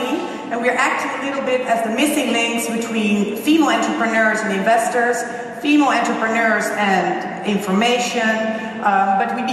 and we're acting a little bit as the missing links between female entrepreneurs and investors, female entrepreneurs and information, but we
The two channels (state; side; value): identical; both; correlation 1.00